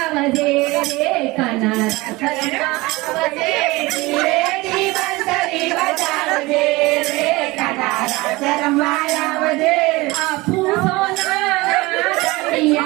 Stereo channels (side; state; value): left; quieter; 21.9 dB